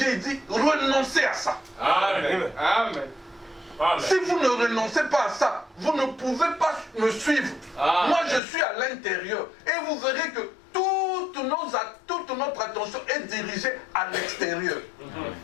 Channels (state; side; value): drops out; right; at 8.4 s